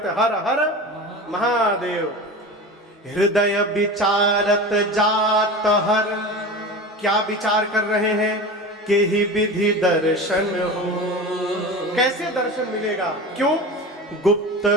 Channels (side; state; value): both; normal; correlation 0.30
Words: हैं हर हर महादेव। हृदय विचारत जात हर, क्या विचार कर रहे हैं? के ही विधि दर्शन हो। कैसे दर्शन मिलेगा? क्यों? गुप्त